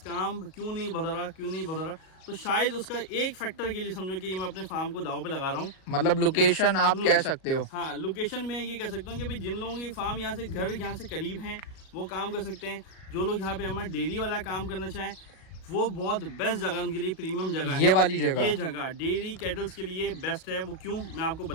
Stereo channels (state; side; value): late; right; 37 ms